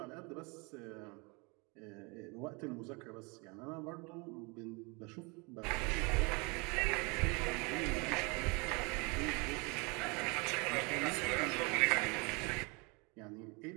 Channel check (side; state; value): left; quieter; 29.9 dB